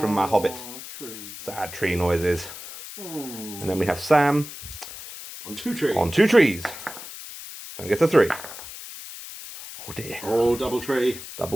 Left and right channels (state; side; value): noise; left; hiss, 12 dB below the sound